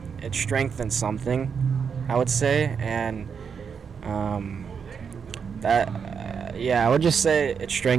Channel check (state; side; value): quieter; left; 6.5 dB